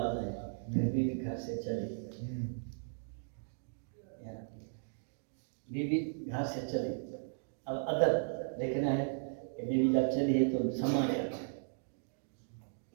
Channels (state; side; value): silent; left; digital silence